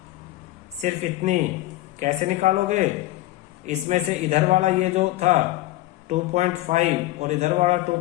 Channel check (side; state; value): right; quieter; 17.1 dB